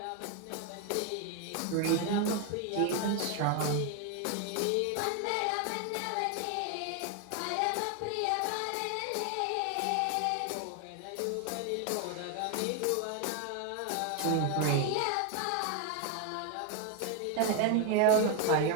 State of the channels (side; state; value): both; different; correlation 0.01